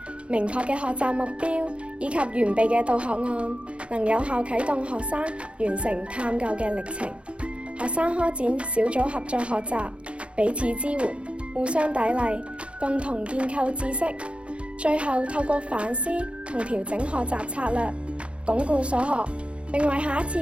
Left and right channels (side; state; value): left; late; 0.059 ms